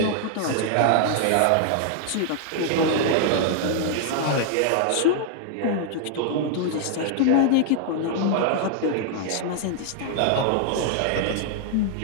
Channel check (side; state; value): both; different; correlation 0.00